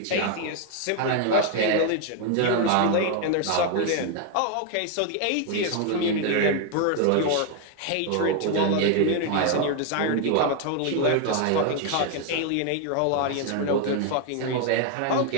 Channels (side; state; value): both; different; correlation 0.01